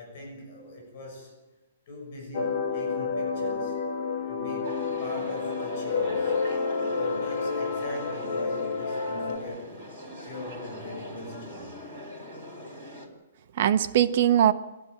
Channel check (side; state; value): both; inverted; correlation -0.51